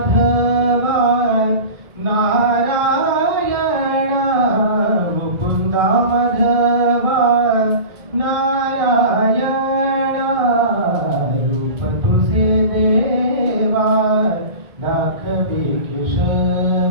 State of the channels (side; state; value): left; late; 1.8 ms